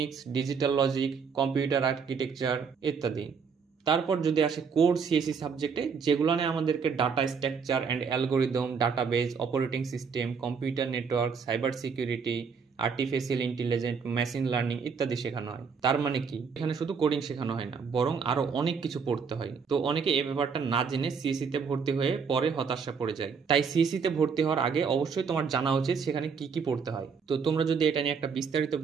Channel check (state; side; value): quieter; left; 5.9 dB